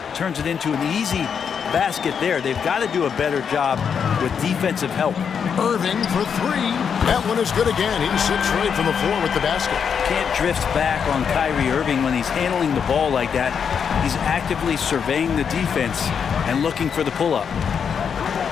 turns it into an easy basket there. They've got to do a better job with defensive help. Irving for three. That one is good again. He's 6 straight from the floor with the basket. Can't drift back on Kyrie Irving when he's handling the ball like that. He's actively surveying the defense and looking for the pull-up.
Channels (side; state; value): right; quieter; 7.0 dB